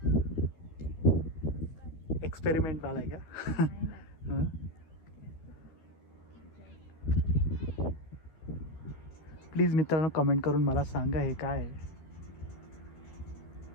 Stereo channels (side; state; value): right; late; 13 ms